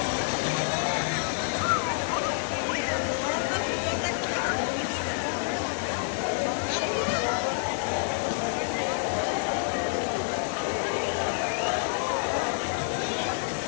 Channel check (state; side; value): silent; right; 59 dB below the other